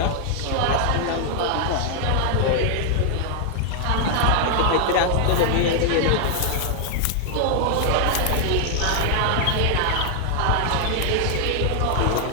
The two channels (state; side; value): different; both; correlation 0.00